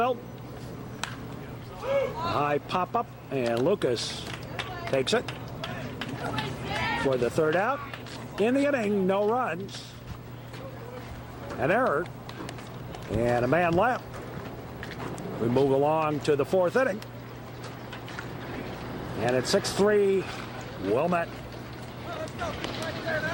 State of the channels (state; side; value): identical; both; correlation 1.00